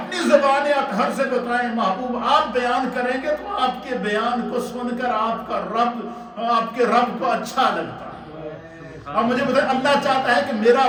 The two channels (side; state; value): both; identical; correlation 1.00